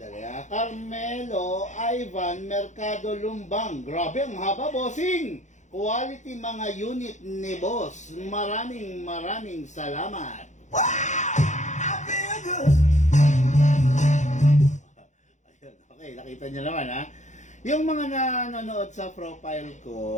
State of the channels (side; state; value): right; late; 0.35 ms